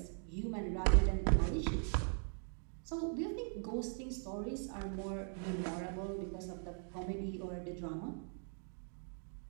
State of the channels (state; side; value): silent; left; 51 dB below the other